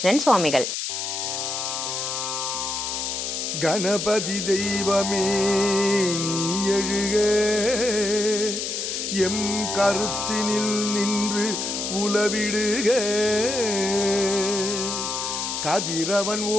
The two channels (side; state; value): left; noise; hiss, 3 dB below the sound